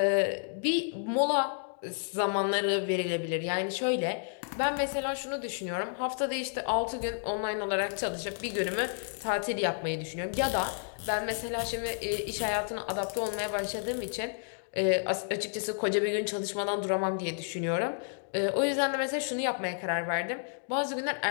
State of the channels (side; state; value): right; silent; digital silence